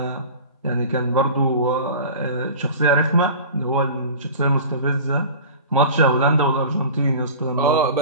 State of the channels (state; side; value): inverted; both; correlation -0.37